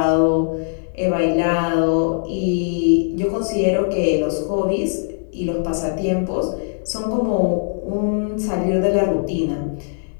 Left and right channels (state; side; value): silent; right; digital silence